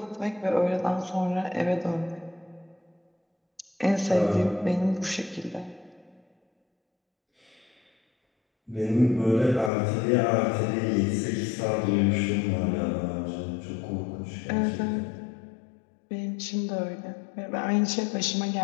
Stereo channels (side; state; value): right; drops out; at 9.7 s